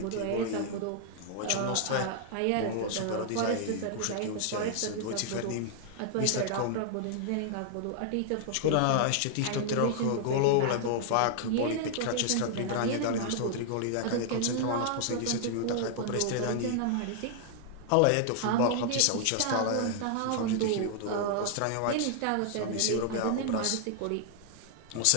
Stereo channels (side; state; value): both; different; correlation -0.01